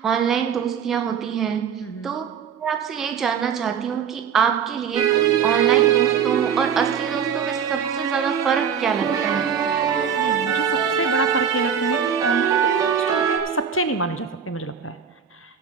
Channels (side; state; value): left; quieter; 7.4 dB